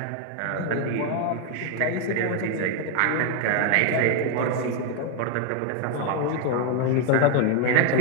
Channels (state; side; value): different; both; correlation 0.01